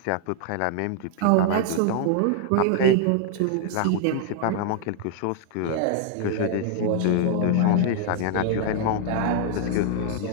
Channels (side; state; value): both; different; correlation 0.00